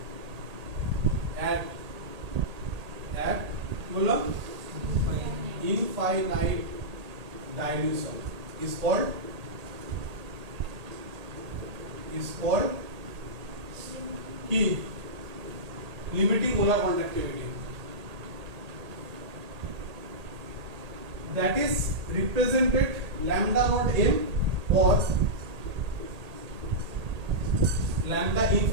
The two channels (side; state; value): left; late; 1.8 ms